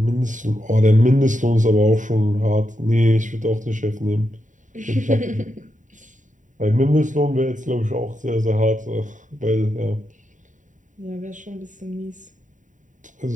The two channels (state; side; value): late; left; 0.37 ms